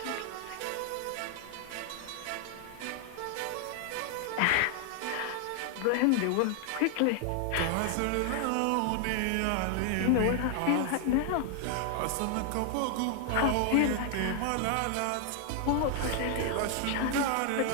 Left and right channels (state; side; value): different; both; correlation 0.00